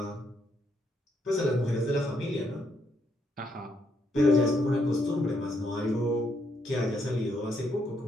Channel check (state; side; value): normal; both; correlation 0.75